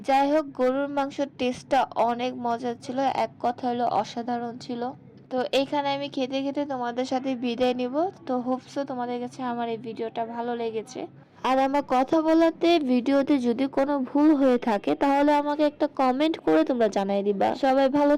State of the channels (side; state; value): both; identical; correlation 1.00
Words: যাই হোক, গরুর মাংসের টেস্টটা অনেক মজার ছিল, এক কথা হলো অসাধারণ ছিল। তো এইখানে আমি খেতে খেতে তোমাদের সাথে বিদায় নিব। তো হোপসো তোমাদের কাছে আমার এই ভিডিওটা ভালো লেগেছে। আর আমার কথা বলাতে ভিডিওতে যদি কোনো ভুল হয়ে থাকে তাহলে আমাকে একটা কমেন্ট করে তোমরা জানাই দিবা। সবাই ভালো